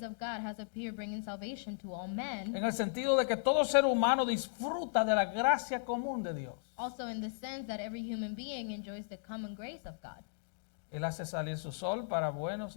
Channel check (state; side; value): silent; right; digital silence